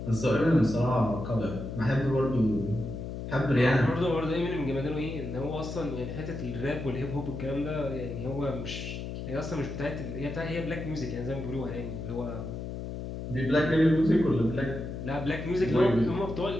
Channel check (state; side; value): noise; left; hum, 7 dB below the sound